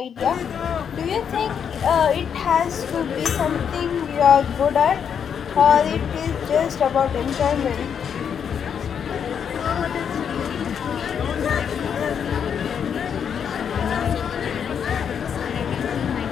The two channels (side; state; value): right; quieter; 7.6 dB